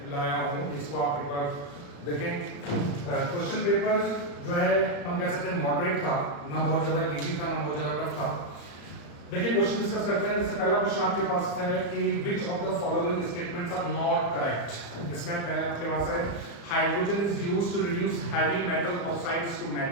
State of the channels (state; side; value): late; right; 35 ms